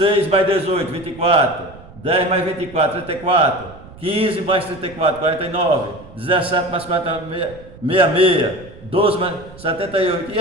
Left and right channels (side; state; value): right; noise; rumble, 19 dB below the sound